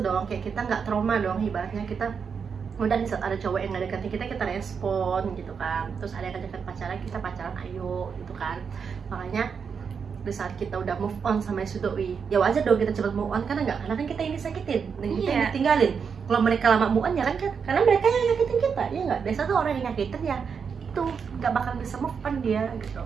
dong, kayak kita nggak trauma dong, ibaratnya kita udah di saat ada cowok yang nggak deketin kita respon gitu kan, terus ada yang deket pacaran, kita pacaran ayo gitu kan. Makanya di saat kita udah move on sama si doi, ya wajar dong kita cepat move on, karena kan kita yang disakitin dan kita yang ditinggalin. Kalau mereka lama move on ya kan, karena mereka yang nyakitin kita, ya nggak? Biasa tuh orang yang nyakitin ya itu nggak bakal bisa move on dia gitu.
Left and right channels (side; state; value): left; quieter; 6.3 dB